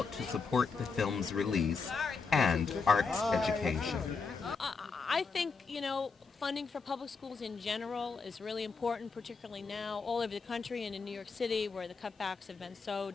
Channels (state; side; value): quieter; right; 4.9 dB